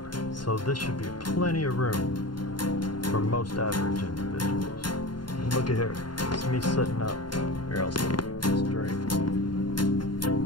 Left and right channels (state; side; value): late; right; 0.71 ms